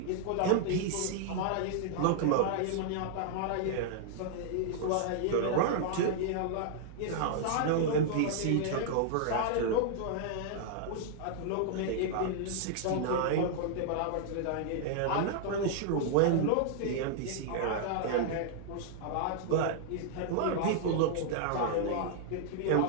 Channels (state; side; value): different; both; correlation -0.01